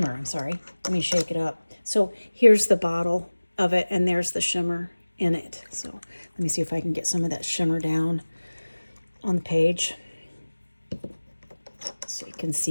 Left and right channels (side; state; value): both; inverted; correlation -1.00